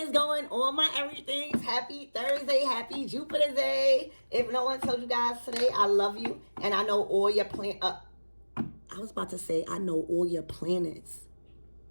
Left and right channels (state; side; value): inverted; both; correlation -1.00